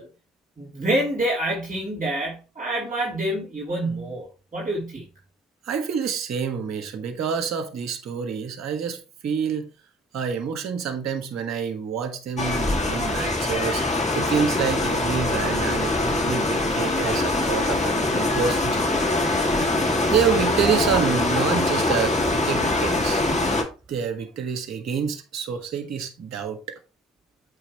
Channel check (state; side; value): normal; both; correlation 0.48